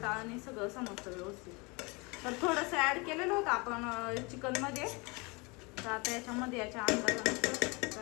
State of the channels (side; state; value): right; quieter; 27.9 dB